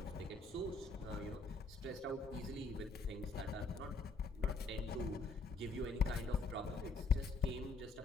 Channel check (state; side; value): quieter; right; 3.8 dB